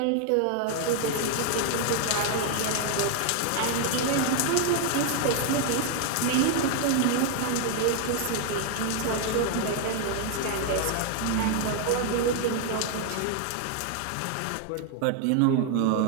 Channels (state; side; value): different; both; correlation 0.00